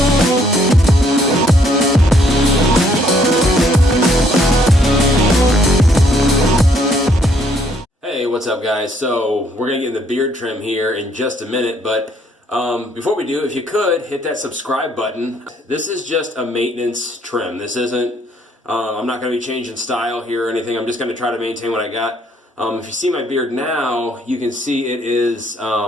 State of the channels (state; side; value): normal; both; correlation 0.67